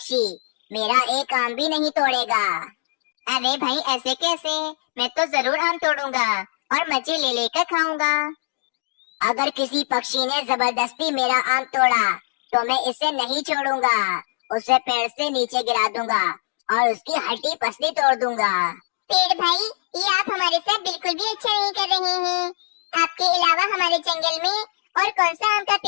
मेरा एक आम भी नहीं तोड़ेगा। अरे भाई ऐसे कैसे? मैं तो जरूर आम तोड़ूंगा और मजे ले लेकर खाऊंगा। अगर किसी पक्षी ने जबरदस्ती मेरा आम तोड़ा तो मैं इसे नहीं छोड़ूंगा, उसे पेड़ से नीचे गिरा दूंगा और उसकी हड्डी पसली तोड़ दूंगा। पेड़ भाई, ये आप हमारे साथ बिल्कुल भी अच्छा नहीं कर रहे हैं। आपके अलावा हमारे जंगल में और कौन सा आम का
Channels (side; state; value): right; silent; digital silence